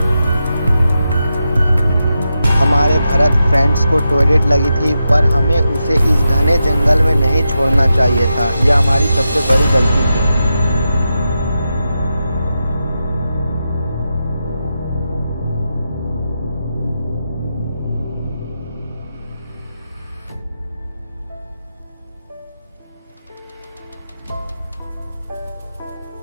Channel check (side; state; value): both; inverted; correlation -0.88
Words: हमारे भरत फ्रेंड्स को टॉयलेट लगी थी, पर हमें उसे इस घने जंगल में नहीं छोड़ना चाहिए था। यह हमारी सबसे बड़ी गलती थी।